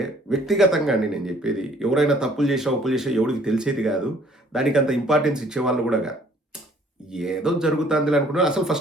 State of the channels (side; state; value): both; normal; correlation 0.59